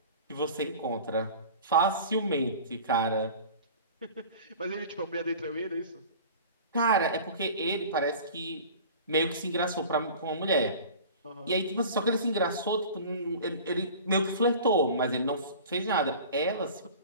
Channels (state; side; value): inverted; both; correlation -0.41